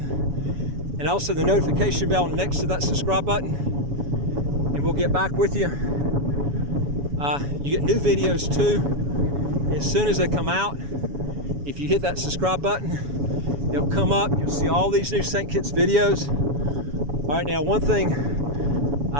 and also the notification bell next to that subscribe button, and we'll get back with you. You get new videos too as soon as they come out. If you hit that subscribe button, they'll come up. You'll see all these new St. Kitts videos. All right, now one thing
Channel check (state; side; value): late; left; 7.1 ms